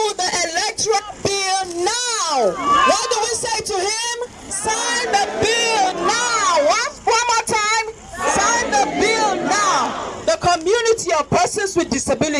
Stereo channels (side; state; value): both; identical; correlation 1.00